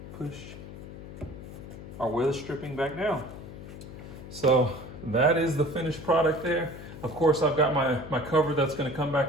push our weather stripping back down. So that is the finished product there. Of course, I've got my cover that's going to come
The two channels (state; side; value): noise; left; hum, 13 dB below the sound